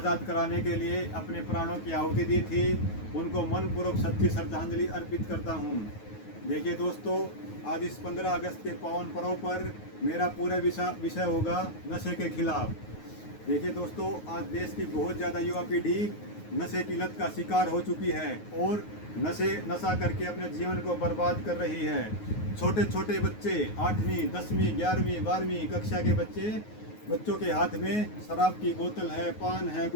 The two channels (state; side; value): late; right; 9.4 ms